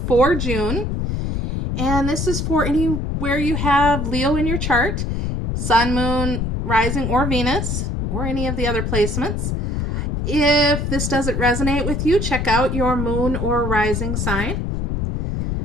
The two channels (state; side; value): noise; left; rumble, 1 dB below the sound